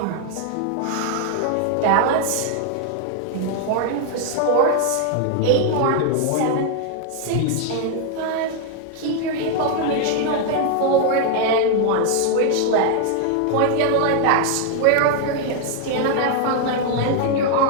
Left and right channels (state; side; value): different; both; correlation 0.00